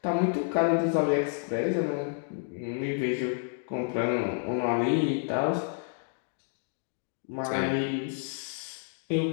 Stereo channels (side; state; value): right; silent; digital silence